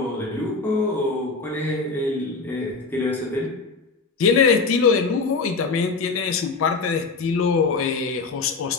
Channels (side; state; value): right; quieter; 4.3 dB